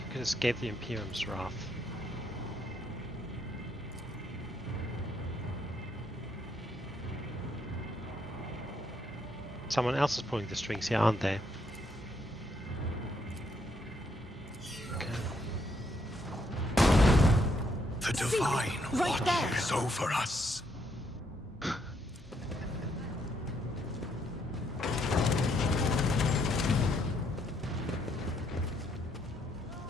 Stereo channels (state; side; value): normal; both; correlation 0.73